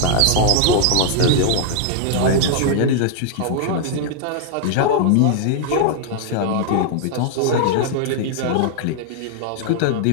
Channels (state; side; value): different; both; correlation -0.01